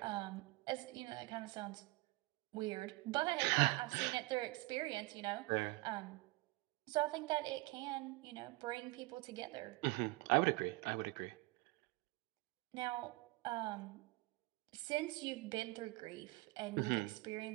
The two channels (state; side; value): quieter; left; 22.8 dB